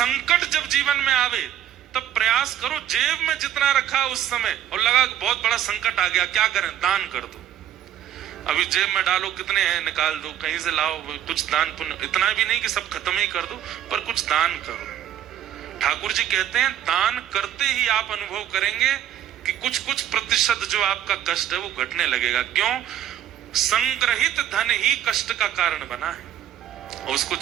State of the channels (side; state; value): left; quieter; 11.1 dB